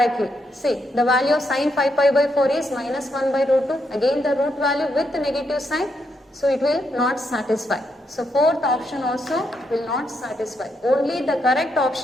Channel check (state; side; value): normal; both; correlation 0.79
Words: See, the value of sine 5 pi by 4 is minus 1 by root 2. Again the root value with the negative sign. So it will not satisfy. So fourth option also will not satisfy. Only the correct